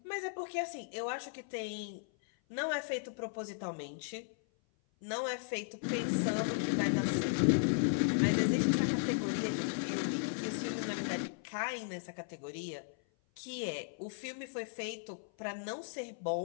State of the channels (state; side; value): silent; right; 54 dB below the other